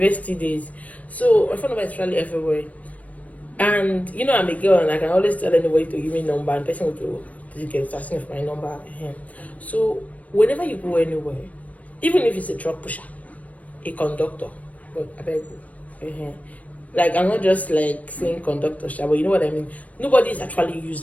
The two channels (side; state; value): right; late; 0.069 ms